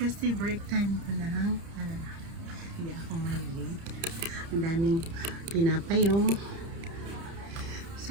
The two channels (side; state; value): left; late; 30 ms